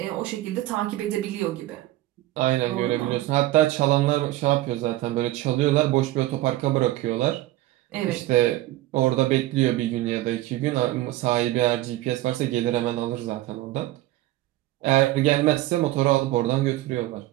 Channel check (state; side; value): quieter; left; 16.3 dB